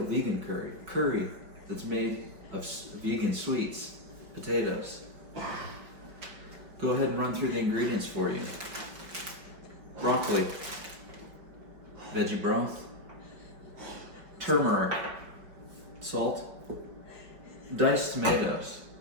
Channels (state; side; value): late; left; 5.1 ms